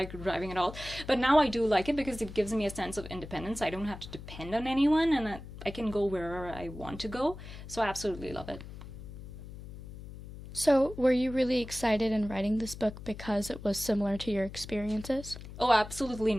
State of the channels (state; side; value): noise; left; hum, 13 dB below the sound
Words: driving at all. But now I do like it, because it gives me a sense of independence. I don't have to depend on anyone, and I can go wherever I want to go. So I absolutely love it. So, were you really excited in writing this book because it was similar to your experiences? Oh, absolutely